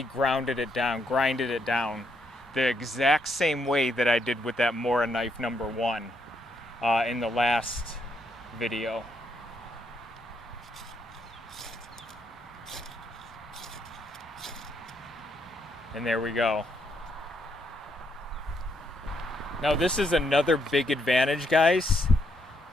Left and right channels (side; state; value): both; normal; correlation 0.75